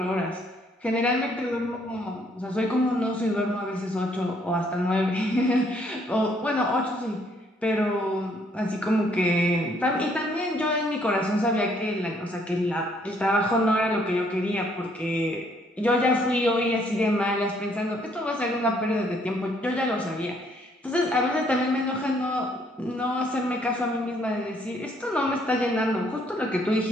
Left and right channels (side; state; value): both; normal; correlation 0.67